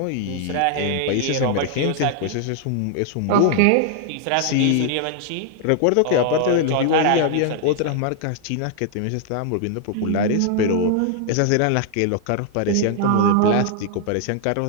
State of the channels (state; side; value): different; both; correlation 0.00